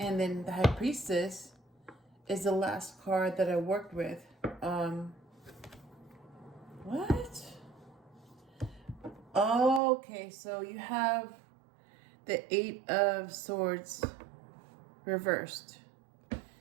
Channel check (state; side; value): drops out; left; at 9.8 s